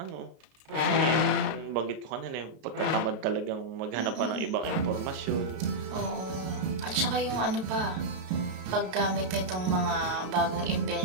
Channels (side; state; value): left; late; 32 ms